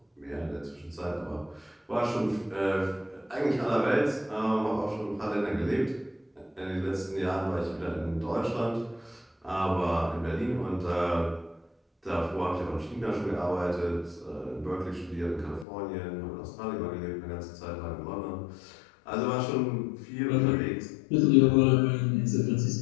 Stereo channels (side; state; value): right; drops out; at 15.7 s